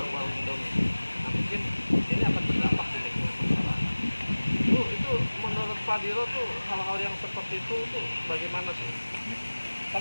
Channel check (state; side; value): inverted; both; correlation -1.00